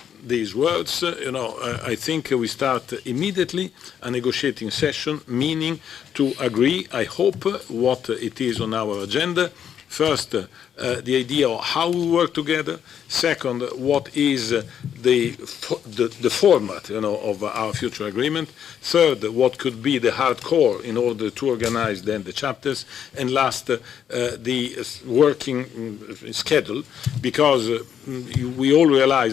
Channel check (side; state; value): right; quieter; 8.9 dB